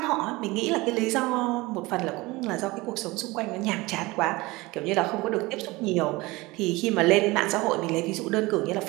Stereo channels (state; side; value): quieter; left; 21.8 dB